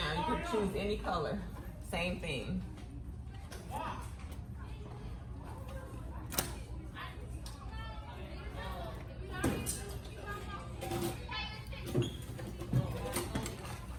You can choose any color. Same thing.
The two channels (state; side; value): identical; both; correlation 1.00